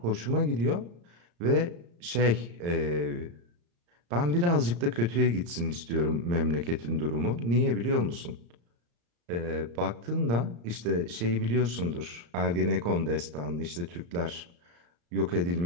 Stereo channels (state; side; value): late; left; 34 ms